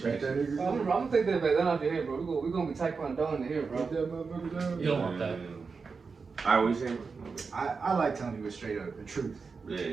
I'm gonna take that back. That off your head, bro. We're gonna be taekwondo in here, bro. You don't want that. Alright, what you saying? I like telling people straight up the truth.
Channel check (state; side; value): quieter; left; 4.9 dB